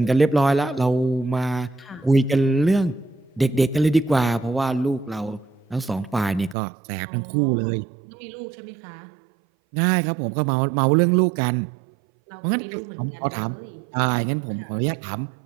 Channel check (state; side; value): drops out; left; at 6.6 s